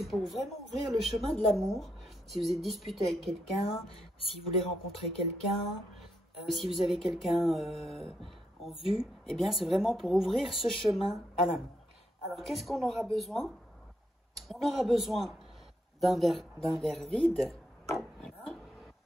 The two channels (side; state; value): both; normal; correlation 0.79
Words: pour vraiment ouvrir le chemin de l'amour. Si vous êtes disputé avec quelqu'un, si vous voulez rencontrer quelqu'un, si vous avez quelqu'un en vue, eh bien c'est vraiment pour ouvrir ce chemin à l'amour. Alors qu'est-ce qu'on aura besoin? On aura besoin d'un verre vide. Voilà.